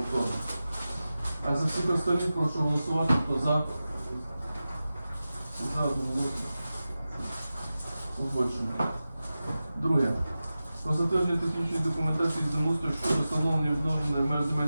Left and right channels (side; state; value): both; inverted; correlation -0.94